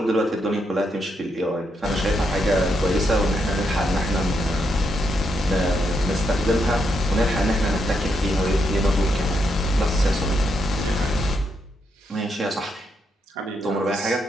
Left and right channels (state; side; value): normal; both; correlation 0.80